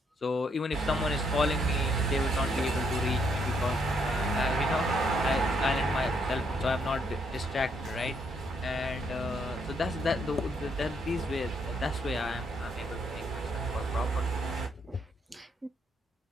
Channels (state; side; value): normal; both; correlation 0.73